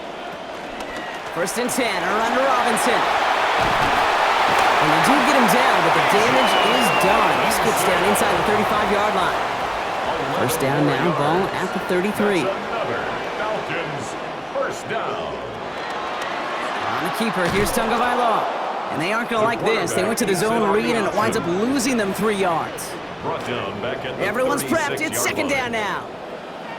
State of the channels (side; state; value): both; identical; correlation 1.00